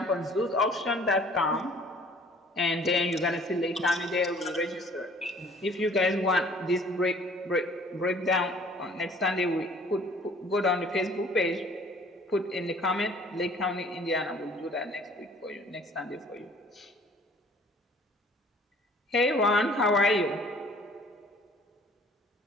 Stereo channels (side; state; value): both; normal; correlation 0.54